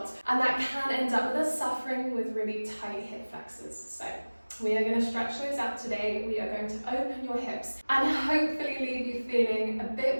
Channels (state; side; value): inverted; both; correlation -1.00